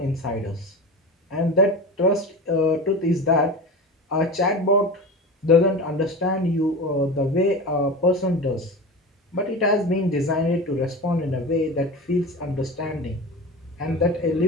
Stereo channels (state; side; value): normal; both; correlation 0.29